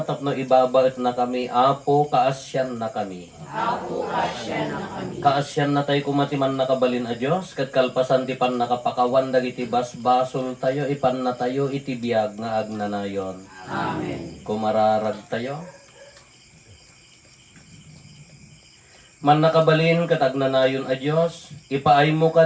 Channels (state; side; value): identical; both; correlation 1.00